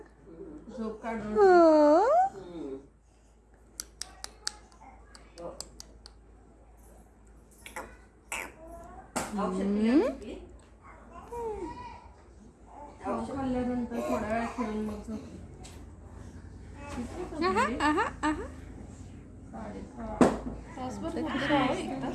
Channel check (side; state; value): both; identical; correlation 1.00